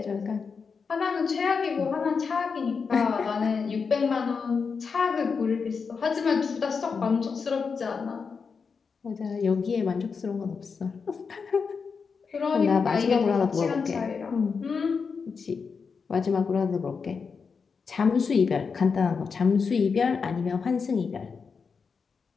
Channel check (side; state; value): right; quieter; 5.4 dB